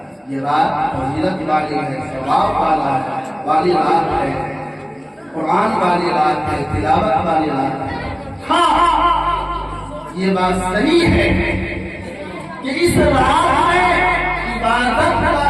ये रात फजीलत वाली है, सवाब वाली रात है, कुरान वाली रात है, तिलावत वाली रात है। हाँ, ये बात सही है कि इस रात में इबादत का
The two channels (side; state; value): both; identical; correlation 1.00